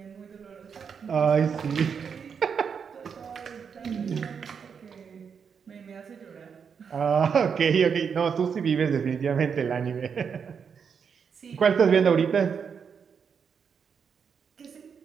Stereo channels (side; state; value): left; quieter; 6.6 dB